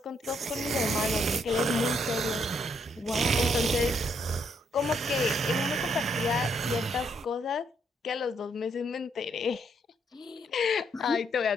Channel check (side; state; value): both; normal; correlation 0.73